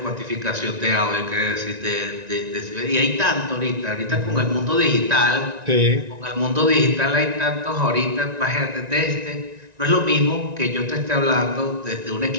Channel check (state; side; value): late; left; 1.9 ms